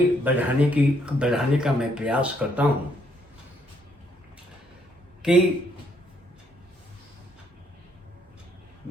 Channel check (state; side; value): normal; both; correlation 0.71